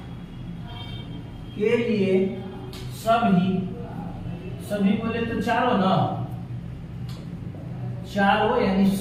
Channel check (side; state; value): both; identical; correlation 1.00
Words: सभी बोले तो चारों ना, चारों यानी